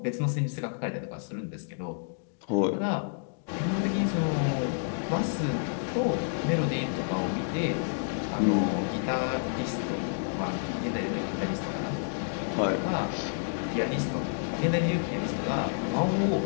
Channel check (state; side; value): silent; right; digital silence